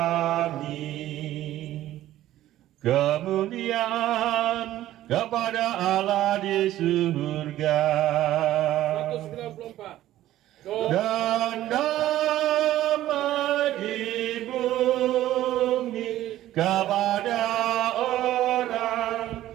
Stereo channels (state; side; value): quieter; left; 14.0 dB